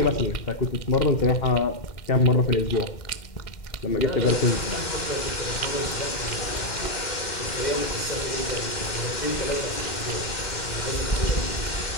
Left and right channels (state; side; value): late; right; 2.1 ms